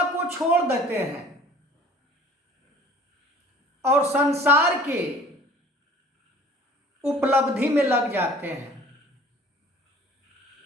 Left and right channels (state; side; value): normal; both; correlation 0.48